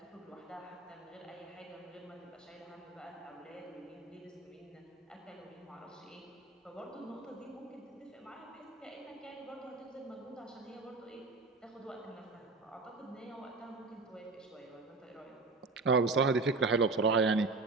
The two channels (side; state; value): left; quieter; 3.8 dB